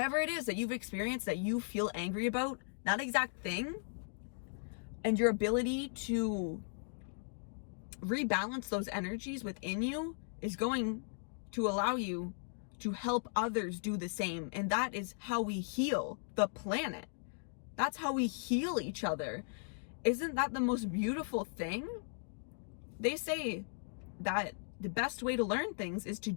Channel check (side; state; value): right; silent; digital silence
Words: it is that you've experienced that you feel angry about, that exact thing, and your ability to rebalance those energies within you is going to allow you to help others do the same. And that is how we heal the planet. That's how we heal each other. Isn't that the most beautiful thing? They say that the best way to learn things is to